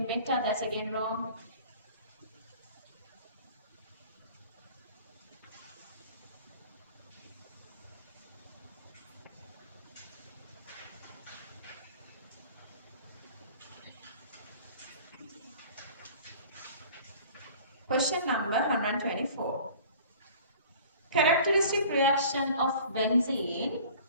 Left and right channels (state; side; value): inverted; both; correlation -0.46